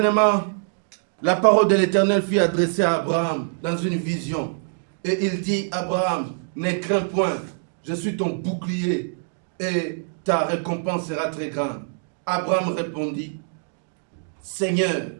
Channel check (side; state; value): left; silent; digital silence